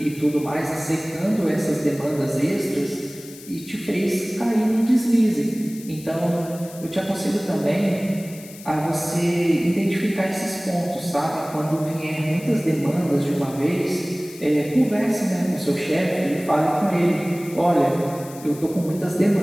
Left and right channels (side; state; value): left; noise; hiss, 18 dB below the sound